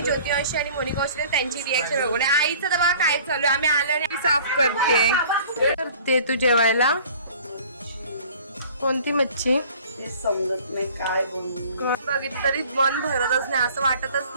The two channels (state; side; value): inverted; both; correlation -0.49